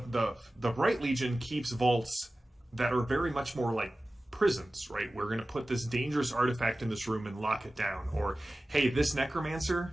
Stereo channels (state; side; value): normal; both; correlation 0.96